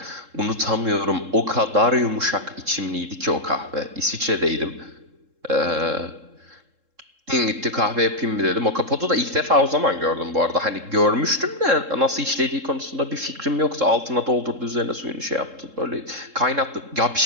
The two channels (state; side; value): late; left; 3.7 ms